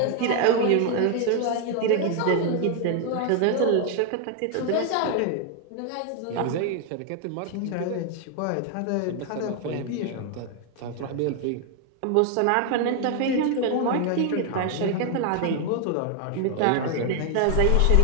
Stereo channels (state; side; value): different; both; correlation 0.00